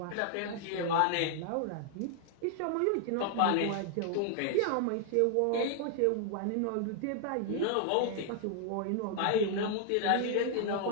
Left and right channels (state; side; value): different; both; correlation 0.00